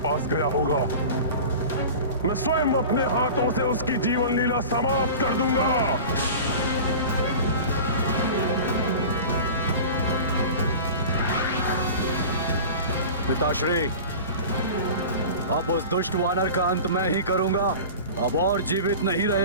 पास गया होगा। मैं स्वयं अपने हाथों से उसकी जीवन लीला समाप्त कर दूंगा। पिताश्री, अब उस दुष्ट वानर का अंत मैं ही करूंगा। अब और जीवित नहीं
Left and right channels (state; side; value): inverted; both; correlation -0.35